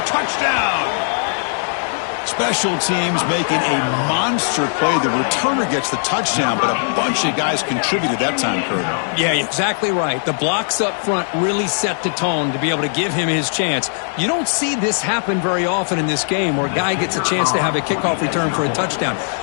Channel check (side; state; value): right; silent; 67 dB below the other